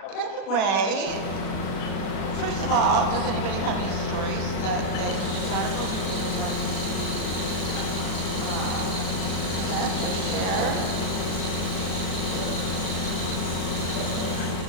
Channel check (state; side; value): late; right; 37 ms